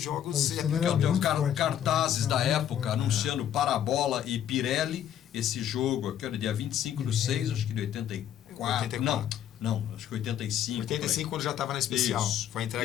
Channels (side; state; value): right; quieter; 10.2 dB